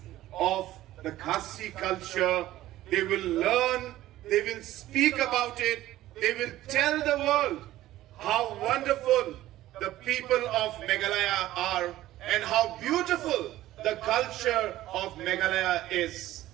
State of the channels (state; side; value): quieter; left; 14.9 dB